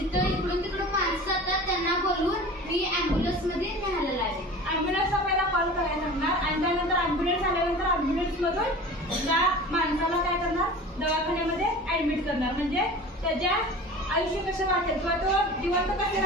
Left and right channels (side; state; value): both; normal; correlation 0.38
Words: इकडून तिकडून माणसं जातात त्यांना बोलवून मी ॲम्ब्युलन्स मध्ये न्यायला लागेल. ॲम्ब्युलन्सला पहिला कॉल करायला लागणार आणि त्यानंतर ॲम्ब्युलन्स आल्यानंतर ॲम्ब्युलन्स मधून त्या माणसाला काय करणार, दवाखान्यामध्ये ऍडमिट करणार. म्हणजे त्याच्या आयुष्य कसं वाटेल किंवा तो जिवंत कसं